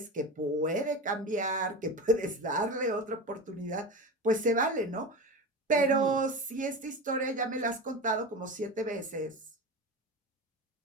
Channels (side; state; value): both; normal; correlation 0.25